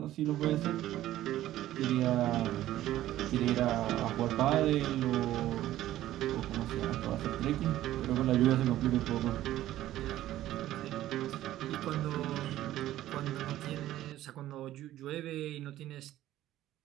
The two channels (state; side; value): quieter; left; 14.0 dB